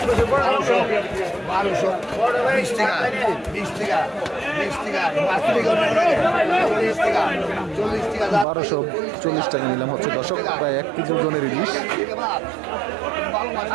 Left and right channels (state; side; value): drops out; left; at 8.5 s